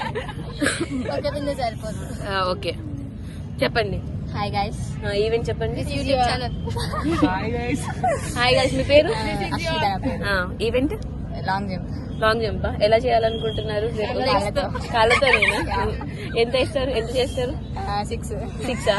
ఓకే చెప్పండి. Hi guys. ఈవెంట్ చెప్పండి. YouTube channel. Hi guys. మీ పేరు? Event long jump. Long jump ఎలా చేయాలనుకుంటున్నారు? కాళ్ళతో. ఎంత ఇస్తారు? ఎంత చేస్తారు? 6.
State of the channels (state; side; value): identical; both; correlation 1.00